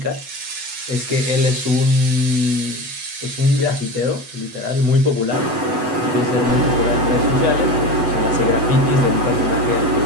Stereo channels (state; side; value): late; left; 8.0 ms